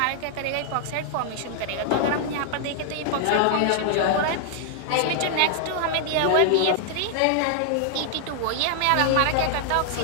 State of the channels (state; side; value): different; both; correlation 0.00